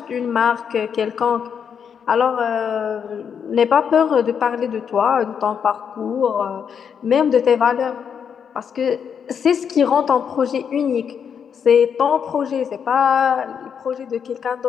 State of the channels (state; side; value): quieter; right; 7.4 dB